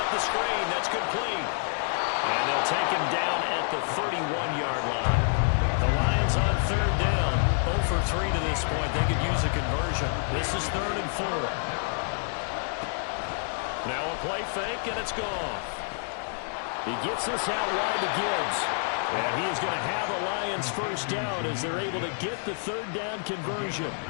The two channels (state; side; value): silent; right; 59 dB below the other